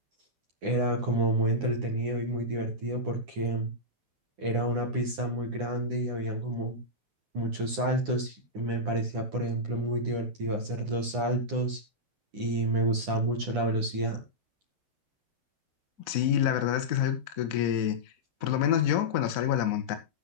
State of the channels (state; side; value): late; left; 9.9 ms